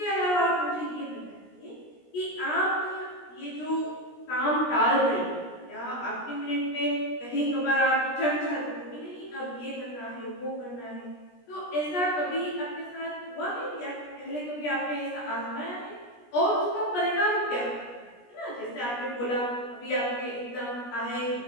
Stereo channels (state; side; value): late; right; 17 ms